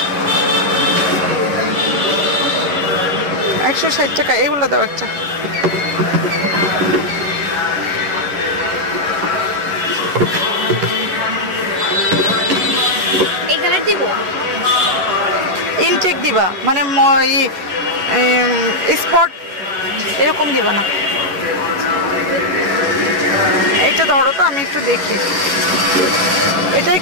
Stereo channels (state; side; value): late; left; 11 ms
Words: 160 টাকা। এগুলো দাও একটা। ইনটেক দিবা মানে স্পট এরকম দিবা না। এটা ধরো তো, আমি একটু দেখি। এটা